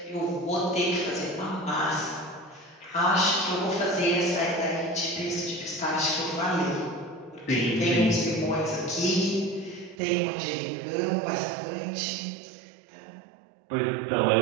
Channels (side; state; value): left; drops out; at 10.0 s